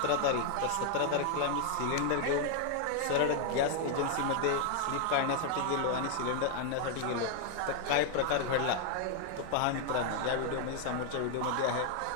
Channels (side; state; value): both; different; correlation 0.00